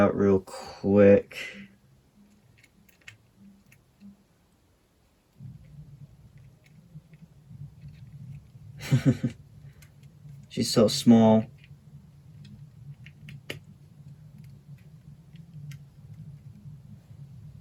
real quick. She's so small.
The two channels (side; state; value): both; identical; correlation 1.00